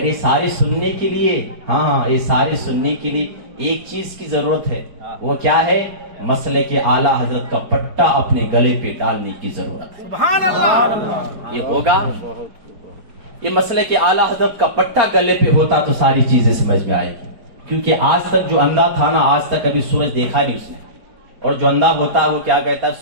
یہ سارے سننے کے لیے، ہاں یہ سارے سننے کے لیے ایک چیز کی ضرورت ہے. وہ کیا ہے؟ مسلک اعلیٰ حضرت کا پٹا اپنے گلے پہ ڈالنے کی ضرورت ہے. سبحان اللہ. یہ ہوگا یہ مسئلہ کہ اعلیٰ حضرت کا پٹا گلے پہ ہوتا تو ساری چیزیں سمجھ میں آئے گی، کیونکہ آج تک جو اندھا تھا نا، آج تک ابھی سورج دیکھا نہیں اس نے، اور جو اندھا ہوتا ہے وہ کیا کہتا ہے،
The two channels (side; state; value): left; late; 4.9 ms